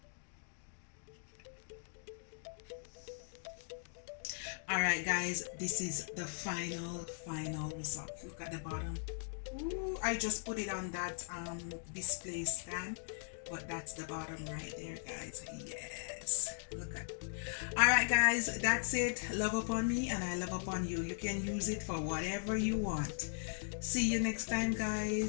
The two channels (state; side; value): silent; right; digital silence